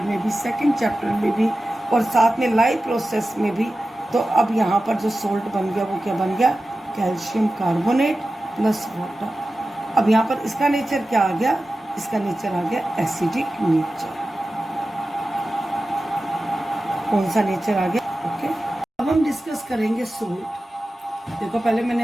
में भी, सेकंड चैप्टर में भी, और साथ में लाइव प्रोसेस में भी। तो अब यहाँ पर जो सोल्ट बन गया वो क्या बन गया, कैल्शियम कार्बोनेट प्लस वाटर। अब यहाँ पर इसका नेचर क्या आ गया, इसका नेचर आ गया एसिडिक नेचर। कौन सा नेचर आ गया, ओके। अब हम डिस्कस करेंगे सोल्ट। देखो पहले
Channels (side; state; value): both; normal; correlation 0.94